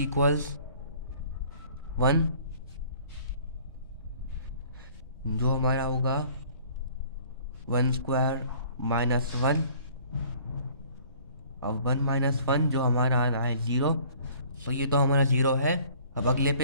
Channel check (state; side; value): inverted; both; correlation -0.53